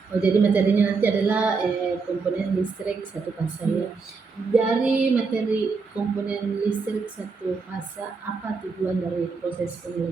Oh, jadi materinya nanti adalah komponen listrik satu fasa ya. Dari materi komponen listrik satu fasa, apa tujuan dari proses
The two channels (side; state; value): left; quieter; 4.7 dB